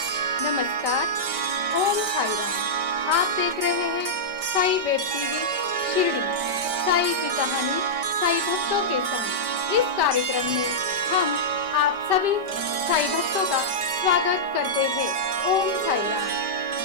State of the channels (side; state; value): left; late; 5.1 ms